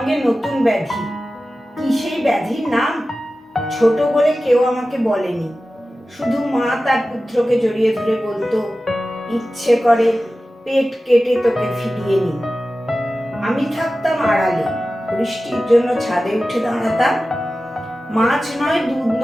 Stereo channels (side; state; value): both; normal; correlation 0.95